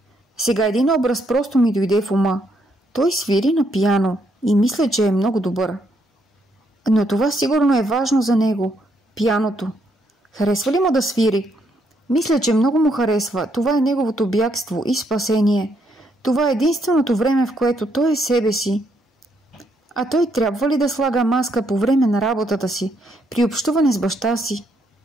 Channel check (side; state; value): both; normal; correlation 0.74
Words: Сега един образ просто ми дойде в ума. Той свири на пиано и мисля, че е много добър. Но това сигурно е важно за него. Пианото. Харесва ли му да свири? Мисля, че много му харесва. Това е неговото бягство и спасение. Това е единственото време, в което той е себе си. А той трябва ли да слага маска по време на работата си, при общуване с баща си?